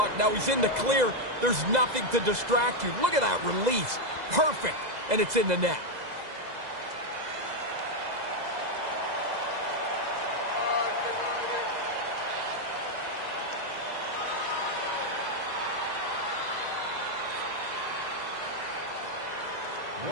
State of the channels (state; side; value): late; left; 2.0 ms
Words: Now he's in the clear. There's nothing to distract you. Look at that release. Perfect. And it's in the net.